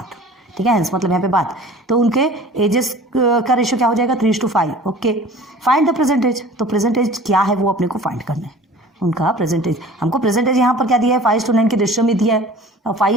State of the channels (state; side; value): normal; both; correlation 0.44